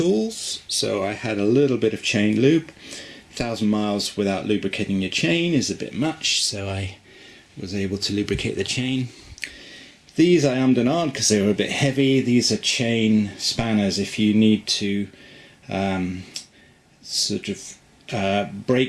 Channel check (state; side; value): identical; both; correlation 1.00